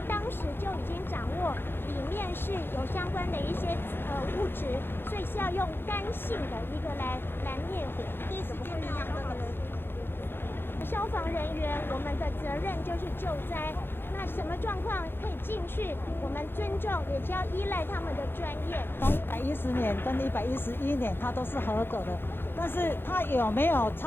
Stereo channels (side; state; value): right; late; 0.10 ms